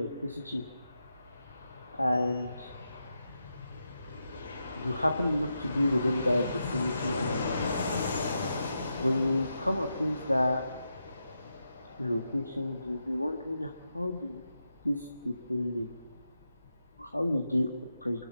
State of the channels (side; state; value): both; inverted; correlation -0.86